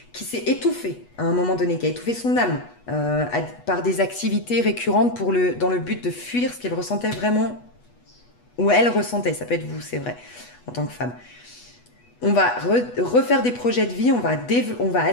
qui s'est étouffé à un moment donné, qui a étouffé son âme par des activités récurrentes dans le but de fuir ce qu'elle ressentait vraiment, ou elle ressentait. Ça peut être vous, c'est vrai, en tant que femme. On va refaire des projets de vie, on va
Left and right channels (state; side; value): late; right; 8.2 ms